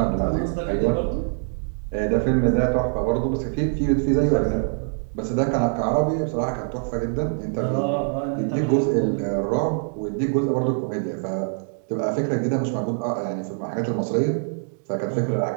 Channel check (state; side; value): silent; left; digital silence